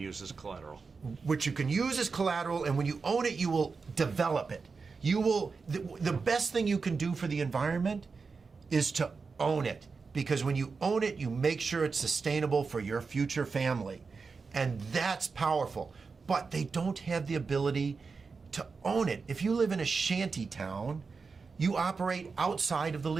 as collateral. Which you can use as collateral, and when you own it, you will develop it. You will, the best thing you can do for the environment is to own it, because when you own it, you make sure it's sustainable for your future family, and that's powerful. But they don't have the ability to own it. If you live in a shanty town, you operate outside of the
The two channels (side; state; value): left; quieter; 4.8 dB